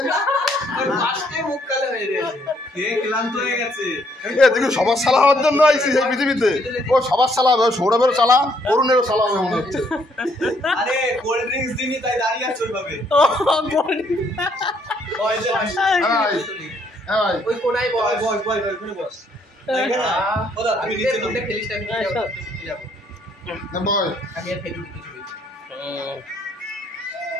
সবার সালা হওয়ার জন্য আইসি এই পৃথিবীতে। ও সবার সালা হবে, সৌরভেরও সালা, অরুণেরও সালা হবে মনে হচ্ছে। আরে কোল্ড ড্রিঙ্কস দিনি তাই দাঁড়িয়ে আছে ওইভাবে। ওই কোনায় বস ওখানে বস। ওদা তুমি নিচে নামতে খেলিস না, আমি যাব না বয়, আমি আর ফেলি কিছু বলছি।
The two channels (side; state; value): both; normal; correlation 0.69